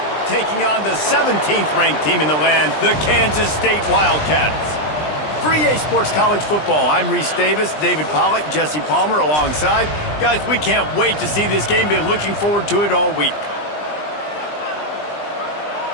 taking on the 17th ranked team in the land, the Kansas State Wildcats. For EA Sports College Football, I'm Reese Davis, David Pollack, Jesse Palmer alongside. Guys, we can't wait to see this game. Been looking forward to it all week.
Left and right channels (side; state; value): right; late; 20 ms